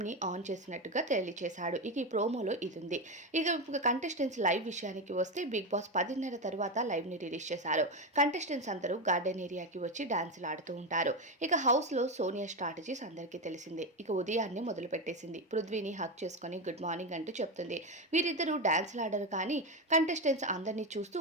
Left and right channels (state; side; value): normal; both; correlation 0.14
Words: ఆన్ చేసినట్టుగా తెలియచేశాడు. ఇక ఈ ప్రోమోలో ఇదుంది. ఇక కంటెస్టెంట్స్ లైవ్ విషయానికి వస్తే బిగ్ బాస్ 10:30 తర్వాత లైవ్‌ని రిలీజ్ చేశారు. కంటెస్టెంట్స్ అందరూ గార్డెన్ ఏరియాకి వచ్చి డాన్సులు ఆడుతూ ఉంటారు. ఇక హౌస్‌లో సోనియా స్ట్రాటజీస్ అందరికీ తెలిసిందే. ఇక ఉదయాన్నే మొదలుపెట్టేసింది. పృథ్వీని హగ్ చేసుకొని గుడ్ మార్నింగ్ అంటూ చెప్తుంది. వీరిద్దరూ డాన్సులు ఆడరు, కానీ కంటెస్టెంట్స్ అందరినీ చూస్తూ